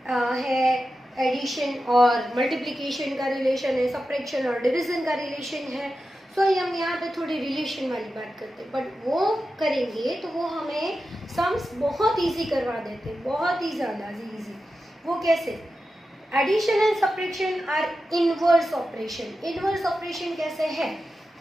है, एडिशन और मल्टीप्लिकेशन का रिलेशन है, सब्ट्रैक्शन और डिवीजन का रिलेशन है। सो हम यहाँ पे थोड़ी रिलेशन वाली बात करते हैं, बट वो करेंगे तो वो हमें सम्स बहुत इजी करवा देते हैं, बहुत ही ज़्यादा इजी। वो कैसे? Addition and subtraction are inverse operation. Inverse operation कैसे है?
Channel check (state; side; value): normal; both; correlation 0.91